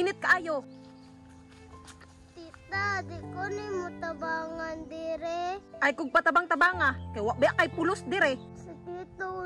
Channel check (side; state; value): both; identical; correlation 1.00